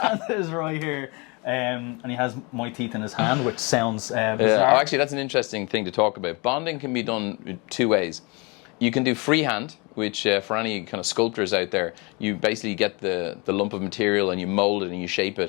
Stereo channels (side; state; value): right; quieter; 29.0 dB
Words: Santa is right here. And he has my teeth in his hand, which sounds bizarre. Oh, actually, that's an interesting thing to talk about. Bonding can be done two ways. You can do freehand, which for any kind of sculptors out there, you basically get the lump of material and you mold it and you shape